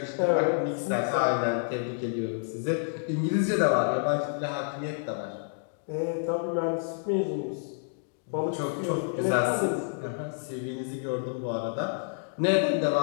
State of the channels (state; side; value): silent; right; digital silence